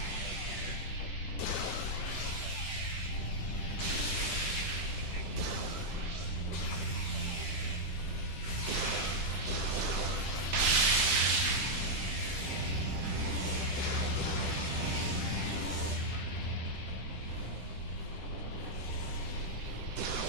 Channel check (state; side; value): late; right; 10 ms